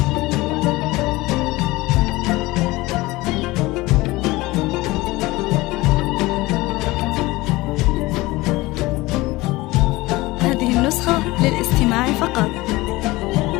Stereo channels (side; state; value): right; quieter; 20.5 dB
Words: هذه النسخة للاستماع فقط.